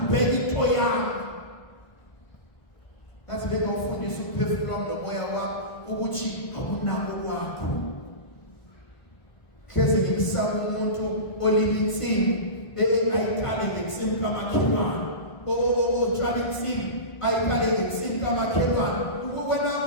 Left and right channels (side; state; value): right; late; 1.5 ms